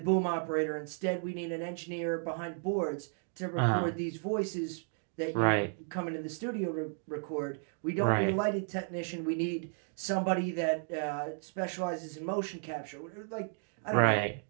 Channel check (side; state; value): left; silent; 55 dB below the other